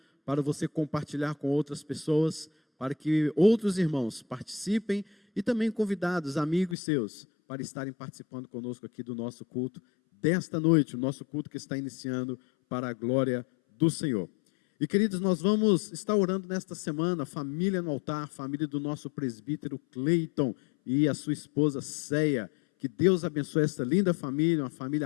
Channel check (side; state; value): right; drops out; at 6.8 s